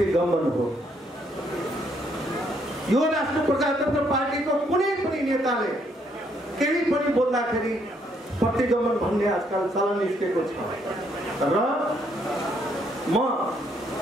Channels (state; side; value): normal; both; correlation 0.71